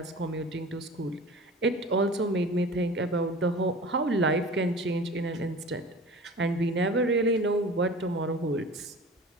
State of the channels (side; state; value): both; normal; correlation 0.39